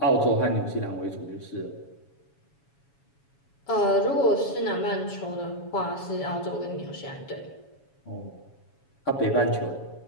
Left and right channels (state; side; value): late; right; 7.2 ms